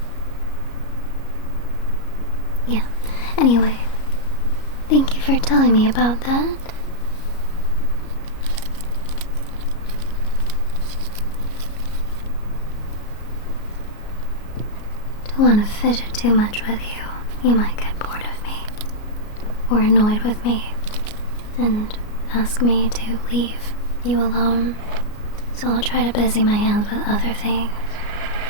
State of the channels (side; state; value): right; late; 33 ms